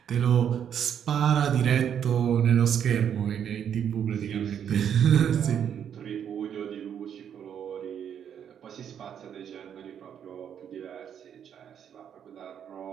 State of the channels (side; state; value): left; quieter; 8.7 dB